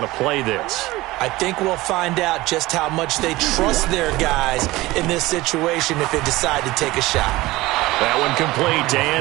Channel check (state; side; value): quieter; left; 19.2 dB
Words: to play this. I think we'll find out just how much they trust their guys in this situation if they decide to take a shot. That one complete to